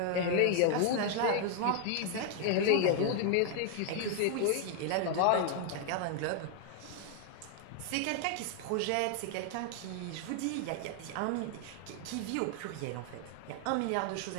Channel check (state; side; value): different; both; correlation 0.00